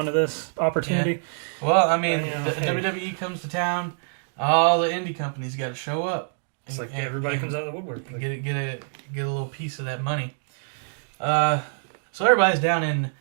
this opportunity. Yeah. Well, I mean, WWE comes to town, all the indie companies got to show up. It's like everybody comes out of the woodwork. Get a little piece of that money. So everybody's down in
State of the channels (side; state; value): left; silent; digital silence